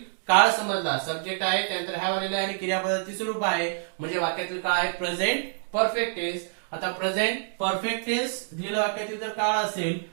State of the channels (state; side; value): silent; left; digital silence